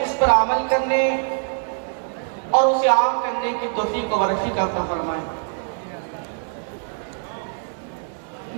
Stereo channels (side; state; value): left; silent; 59 dB below the other